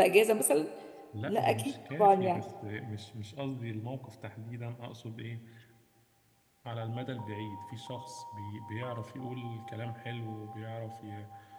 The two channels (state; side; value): identical; both; correlation 1.00